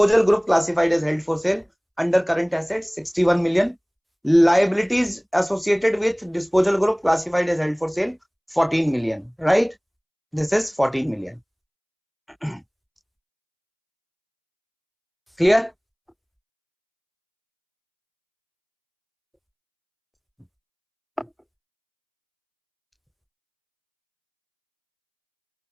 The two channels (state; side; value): identical; both; correlation 1.00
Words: group classified as held for sale under current assets 61 million. Liabilities associated with disposal group classified as held for sale 14 million, right? This is 14 million. Clear?